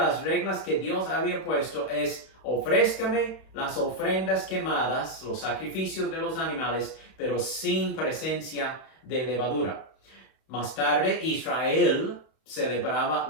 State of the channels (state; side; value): late; right; 31 ms